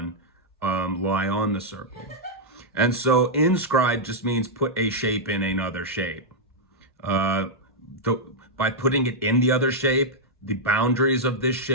lie on the circle. And so inscribed just means put a shape in another shape. By putting it in the other shape, the boundaries of this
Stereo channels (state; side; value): normal; both; correlation -0.05